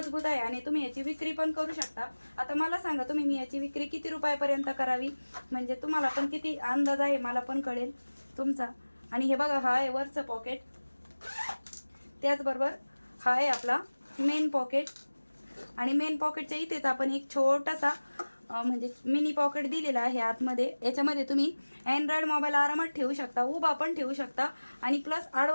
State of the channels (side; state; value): both; inverted; correlation -1.00